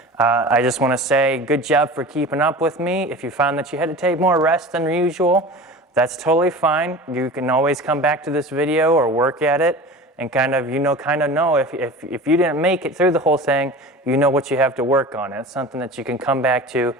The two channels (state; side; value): normal; both; correlation 0.36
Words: I just want to say good job for keeping up with me. If you found that you had to take more rest than usual, that's totally fine. You can always come back to this video or work at it and kind of know if you didn't make it through the whole thing, you know what you have to work on. It's something that you can come back to